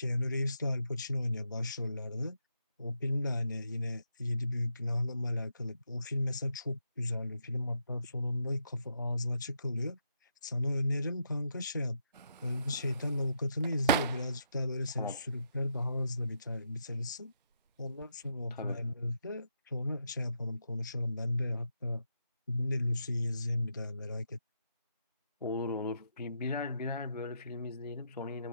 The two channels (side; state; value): both; inverted; correlation -0.80